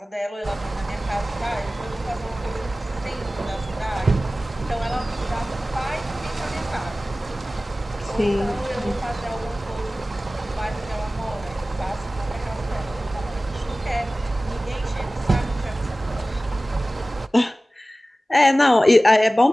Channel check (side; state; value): both; normal; correlation 0.97